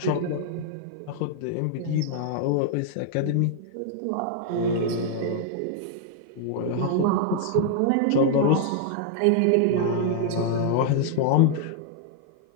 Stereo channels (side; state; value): both; different; correlation 0.00